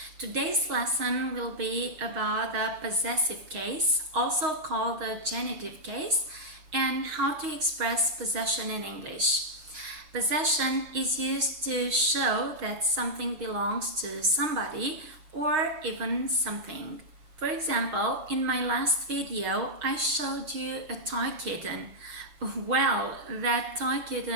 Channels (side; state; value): left; late; 6.4 ms